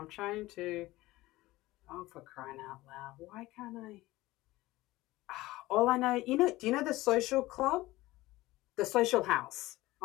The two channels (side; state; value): right; quieter; 18.4 dB